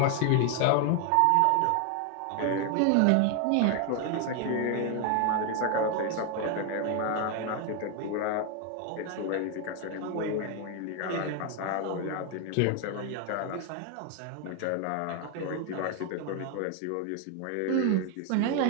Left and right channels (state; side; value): different; both; correlation 0.01